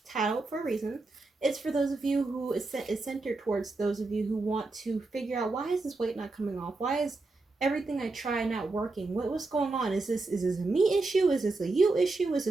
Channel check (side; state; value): left; quieter; 3.4 dB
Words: titled for a reason. It's for those of you who is centered towards those of you who want to figure out, why is this weight not coming off? Why is everything I try not working? What's going on? Is this a me issue? Is this a you issue? Is